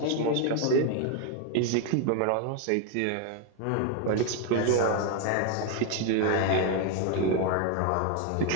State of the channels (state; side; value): different; both; correlation 0.01